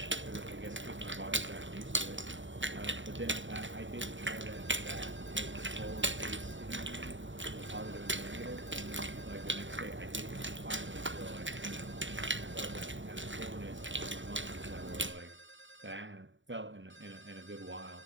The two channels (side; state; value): left; late; 0.55 ms